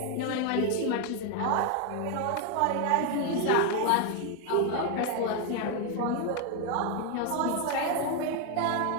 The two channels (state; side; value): different; both; correlation 0.01